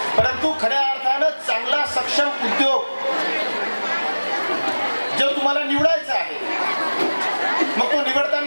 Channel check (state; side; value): inverted; both; correlation -1.00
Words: परंतु खऱ्या अर्थानं चांगला सक्षम उद्योग जो तुम्हाला निवडायचा आहे, मग तो